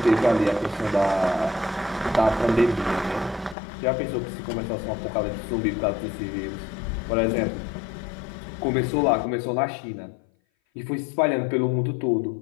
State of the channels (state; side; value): drops out; right; at 3.6 s